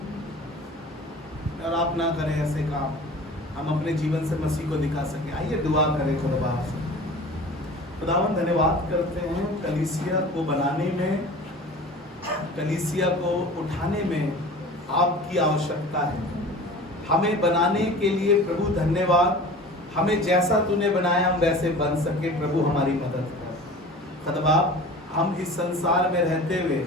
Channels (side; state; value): both; normal; correlation 0.40